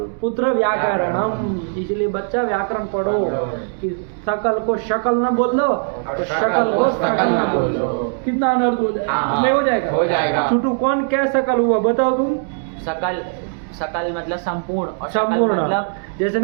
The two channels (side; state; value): left; silent; digital silence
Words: पुत्र व्याकरणम, इसलिए बच्चा व्याकरण पढ़ो कि सकल को शकल न बोल दो, तो शकल को सकल न बोल दो, कितना अनर्थ हो जाएगा, नहीं हो जाएगा, हो जाएगा। छोटू कौन क्या सकल हुआ बताओ तुम, सकल, सकल मतलब संपूर्ण, और शकल संपूर्ण मतलब जैसे